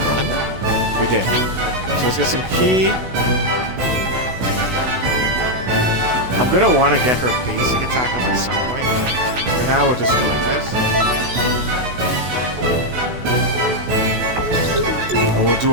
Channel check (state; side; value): late; left; 16 ms